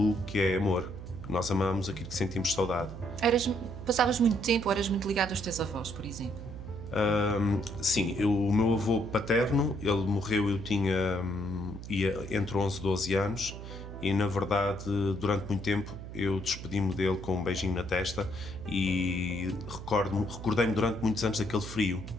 que é amor. Nós amamos aquilo que sentimos saudade. Passavas muito tempo ou eras muito ligado aos teus avós, por exemplo? Sim, o meu avô paterno, ele morreu, eu ia entre 11 e 12 anos. E, na verdade, durante muito tempo eu despedi-me dele com um beijinho na testa e recordei-me durante muitos anos daquele frio,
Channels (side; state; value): right; noise; hum, 11 dB below the sound